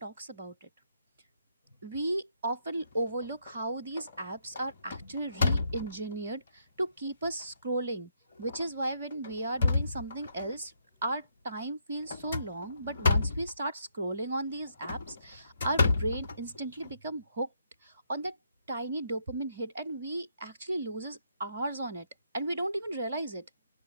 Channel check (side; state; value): both; inverted; correlation -0.75